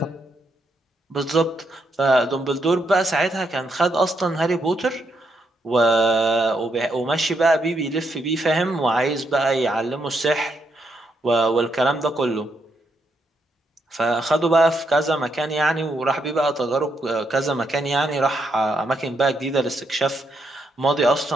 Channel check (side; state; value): both; normal; correlation 0.79